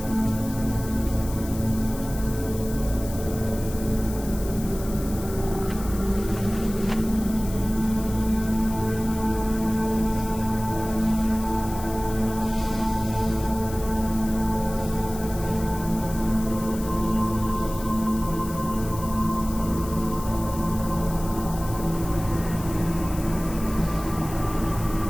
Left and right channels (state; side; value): noise; left; hiss, 14 dB below the sound